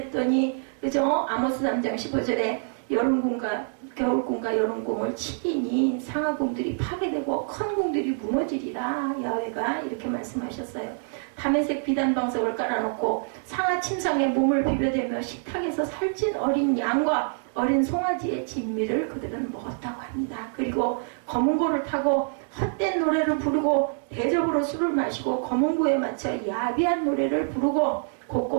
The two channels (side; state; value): left; silent; 61 dB below the other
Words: 그죠? 아모스 3장 15절에 여름궁과 겨울궁과 여름궁을 치리니 상하궁들이 파괴되고 큰 궁들이 무너지리라. 야훼가 이렇게 말씀하셨어요. 다메섹 비단방석을 깔아놓고 상하 침상에 몸을 비벼대며 식탁에서 살찐 어린 양과 어린 송아지의 진미를 그들은 먹었다고 합니다. 그리고 검은고를 타고 헛된 노래를 부르고 대접으로 술을 마시고 검은고에 맞춰 야비한 노래를 부르고